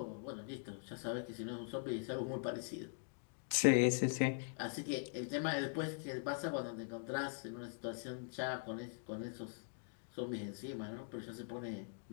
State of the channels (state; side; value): silent; right; digital silence